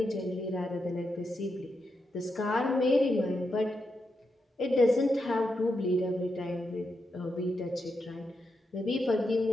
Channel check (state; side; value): normal; both; correlation 0.85